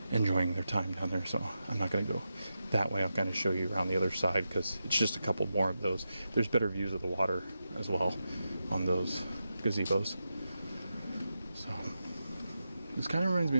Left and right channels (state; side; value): inverted; both; correlation -0.89